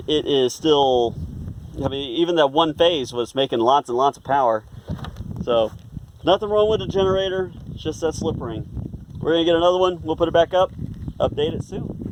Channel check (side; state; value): both; identical; correlation 1.00